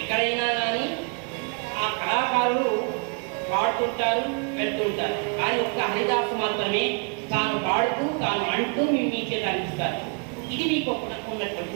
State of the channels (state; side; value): quieter; left; 37.1 dB